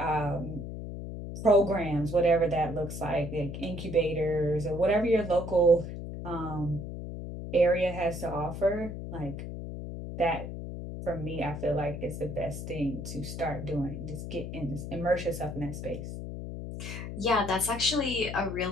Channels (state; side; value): noise; left; hum, 7 dB below the sound